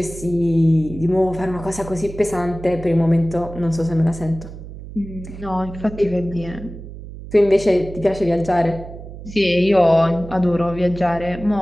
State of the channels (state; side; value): noise; right; hum, 13 dB below the sound